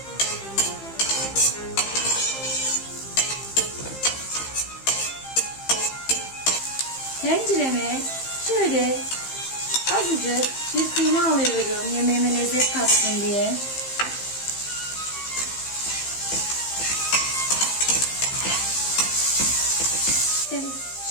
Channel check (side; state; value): right; late; 15 ms